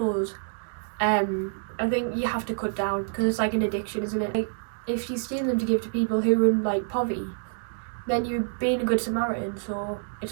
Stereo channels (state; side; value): silent; left; digital silence